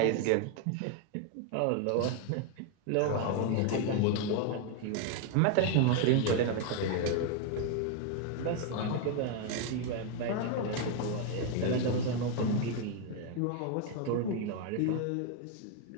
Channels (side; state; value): both; different; correlation 0.01